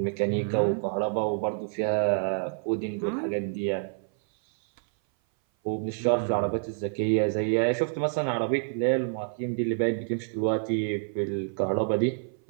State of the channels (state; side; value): silent; left; 57 dB below the other